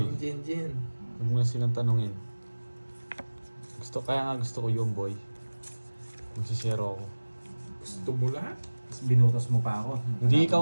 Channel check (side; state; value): both; inverted; correlation -1.00